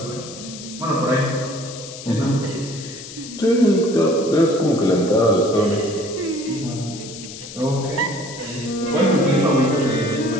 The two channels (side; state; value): left; noise; hiss, 13 dB below the sound